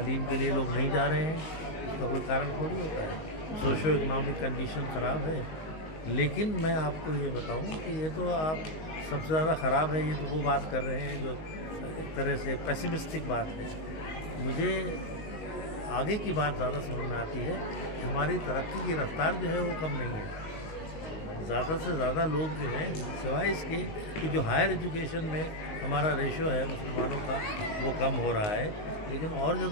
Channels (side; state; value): right; late; 19 ms